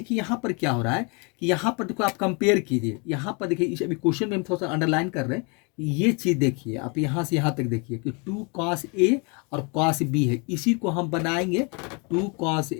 यहाँ पर क्या हो रहा है कि यहाँ पर देखो आप कंपेयर कीजिए, यहाँ पर देखिए इस अभी क्वेश्चन में हम थोड़ा सा अंडरलाइन कर रहे हैं, ये चीज़ देखिए आप यहाँ से यहाँ तक देखिए कि 2 cos A और cos B है, इसी को हम बनाएंगे 2 cos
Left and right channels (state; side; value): quieter; right; 32.6 dB